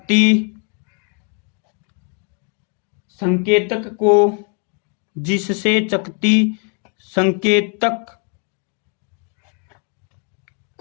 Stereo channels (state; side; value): quieter; right; 39.3 dB